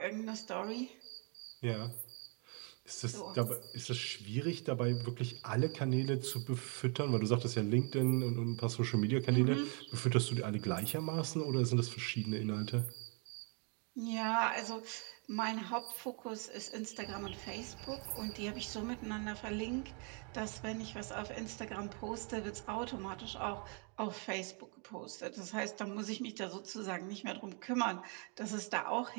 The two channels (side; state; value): left; quieter; 36.9 dB